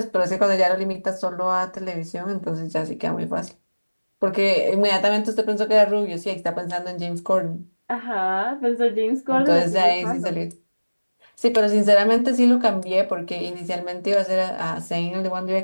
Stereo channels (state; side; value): inverted; both; correlation -1.00